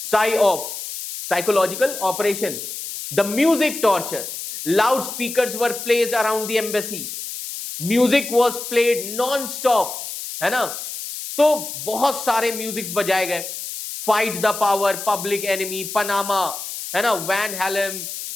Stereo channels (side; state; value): left; noise; hiss, 8 dB below the sound